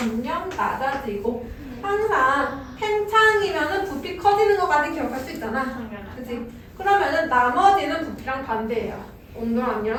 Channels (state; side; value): identical; both; correlation 1.00